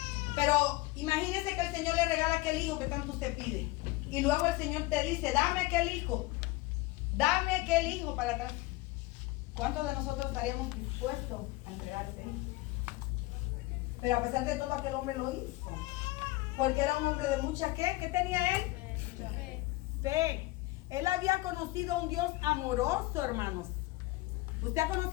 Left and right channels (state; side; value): quieter; right; 20.1 dB